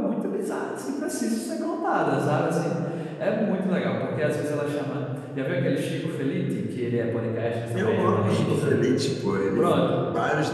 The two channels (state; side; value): identical; both; correlation 1.00